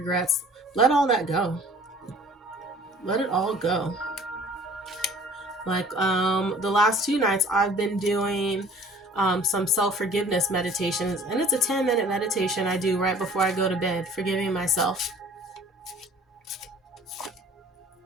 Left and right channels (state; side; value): normal; both; correlation 0.50